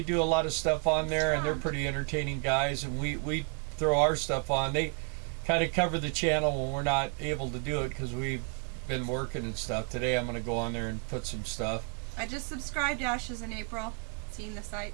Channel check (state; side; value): quieter; left; 36.1 dB